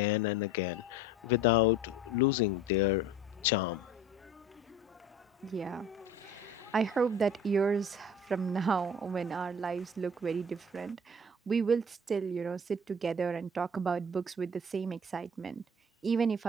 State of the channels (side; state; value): both; normal; correlation 0.44